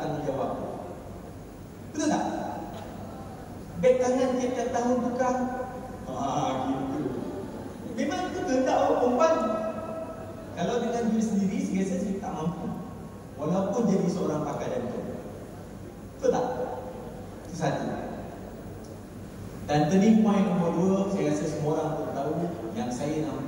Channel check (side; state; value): both; identical; correlation 1.00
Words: tanggungjawab. Betul tak? Beg tangan tiap-tiap tahun tukar. Gitu. Memang itu kehendak orang perempuan. Kalau dengan diri sendiri, saya tak mampu. Walaupun jadi seorang pakar jantung. Betul tak? Itu satu. Dan turning point nombor 2, saya rasa semua orang pun tahu, yang saya